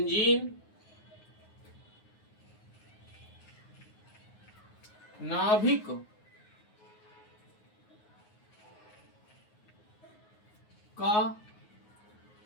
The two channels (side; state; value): right; late; 9.5 ms